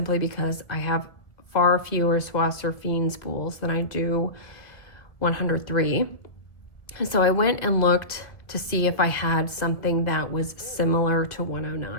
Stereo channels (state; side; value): late; right; 1.6 ms